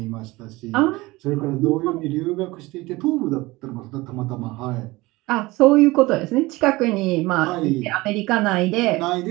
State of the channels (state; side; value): quieter; left; 20.9 dB